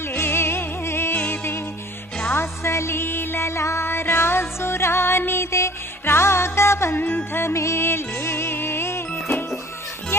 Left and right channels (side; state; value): both; normal; correlation 0.50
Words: రాసలీలల రాజు రానిదే రాగబంధమే లేదే